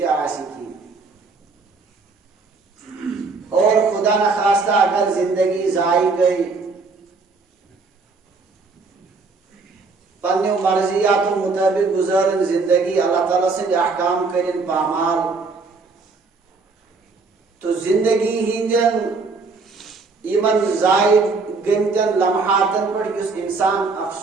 کی اور خدا نخواستہ اگر زندگی ضائع گئی پنہ مرضیات و مطابق گزارن زندگی اللہ تعالیٰ سے احکام کرن پامال تو زندگی ہندین ایمن ضائع گمتن لمحاتن پر اس انسان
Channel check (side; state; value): left; quieter; 4.1 dB